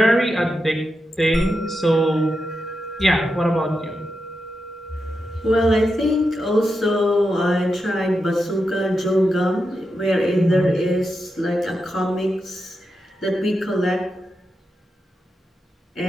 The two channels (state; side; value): normal; both; correlation 0.88